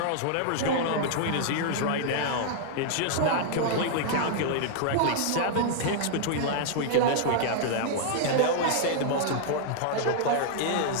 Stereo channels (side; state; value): both; different; correlation -0.01